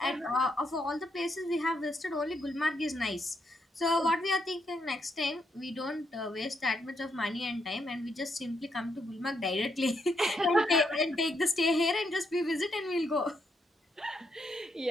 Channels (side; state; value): both; normal; correlation 0.78